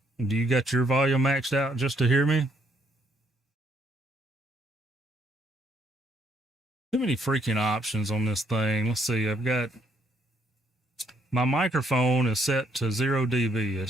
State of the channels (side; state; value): both; normal; correlation 0.70